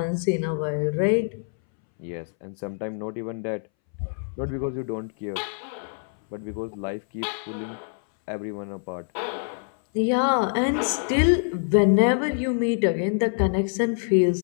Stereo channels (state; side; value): silent; right; 61 dB below the other